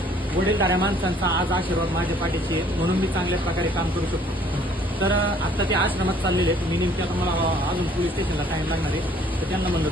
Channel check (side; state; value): both; normal; correlation 0.59